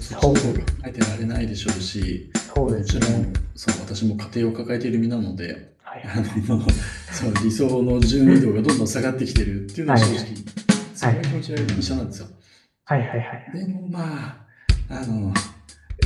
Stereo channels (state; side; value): identical; both; correlation 1.00